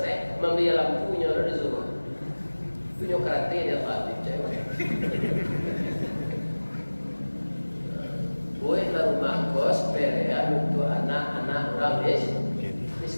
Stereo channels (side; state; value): both; inverted; correlation -1.00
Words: membeli lampunya lalu disuruh. Punya karate dia pasti cewek. Buatlah rumah kos perean untuk anak-anak orang